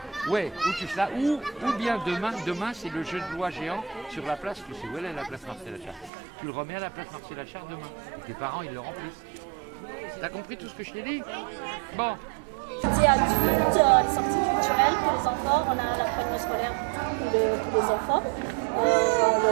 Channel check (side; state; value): left; drops out; at 6.1 s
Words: Ouais, ou tu ça, ou bien demain, c'est le jeu de loi géant sur la place, tu sais où elle est la place Marcel Achard. Tu le remets à la place Marcel Achard demain. Et tes parents, ils le remplissent. T'as compris tout ce que je t'ai dit? Bon. Sorties adultes, les sorties culturelles pour les enfants, on a l'accompagnement scolaire pour les enfants, on a